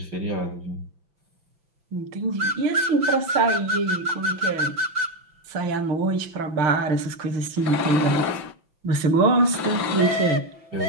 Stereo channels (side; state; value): left; late; 5.9 ms